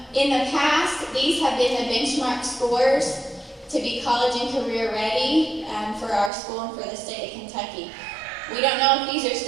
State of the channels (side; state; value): left; drops out; at 6.3 s